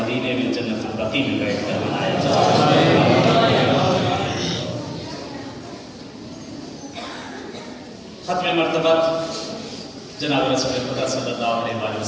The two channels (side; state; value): both; identical; correlation 1.00